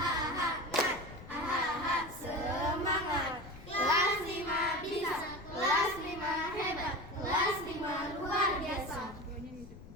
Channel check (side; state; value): left; noise; rumble, 16 dB below the sound